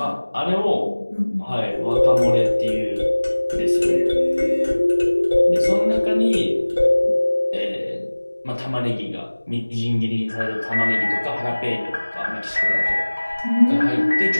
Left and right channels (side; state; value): both; inverted; correlation -1.00